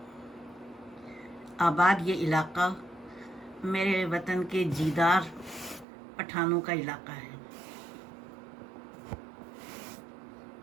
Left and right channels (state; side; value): drops out; left; at 5.9 s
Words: आबाद ये इलाका मेरे वतन के जीदार पठानों का इलाका है।